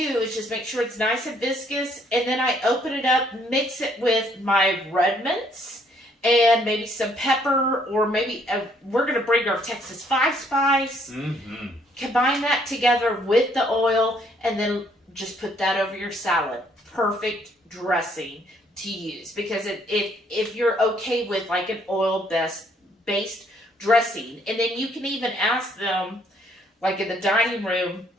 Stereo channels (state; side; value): normal; both; correlation 0.67